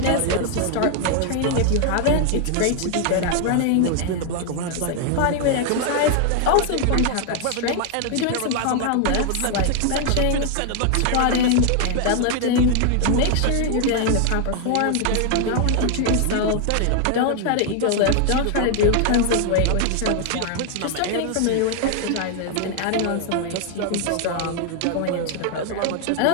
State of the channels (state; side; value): different; both; correlation 0.00